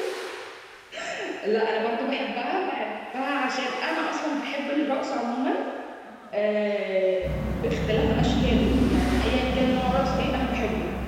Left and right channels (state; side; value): identical; both; correlation 1.00